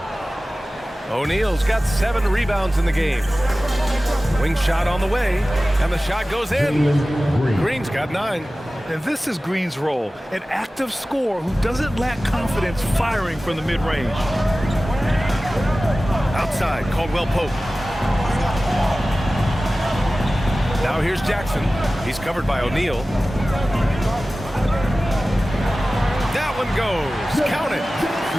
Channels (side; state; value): both; normal; correlation 0.96